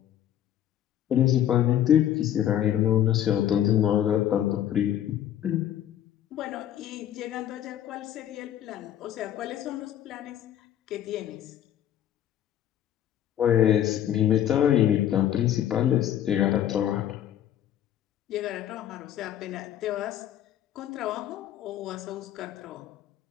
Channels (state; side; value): quieter; right; 11.1 dB